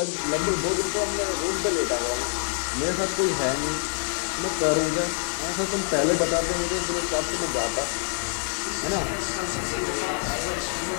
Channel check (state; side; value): silent; right; 61 dB below the other